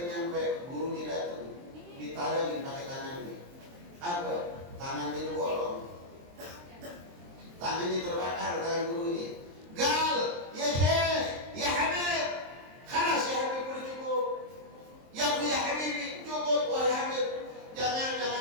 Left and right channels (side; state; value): left; late; 23 ms